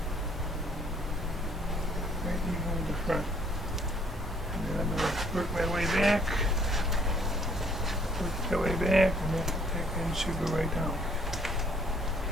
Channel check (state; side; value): normal; both; correlation 0.62